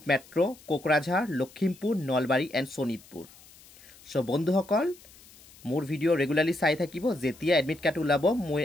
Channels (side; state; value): left; noise; hiss, 24 dB below the sound